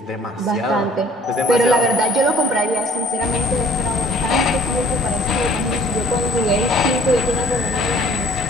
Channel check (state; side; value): normal; both; correlation 0.56